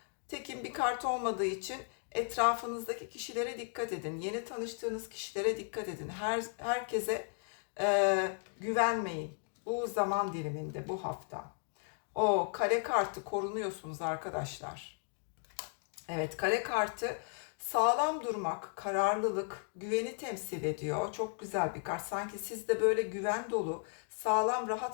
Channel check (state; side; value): silent; right; 54 dB below the other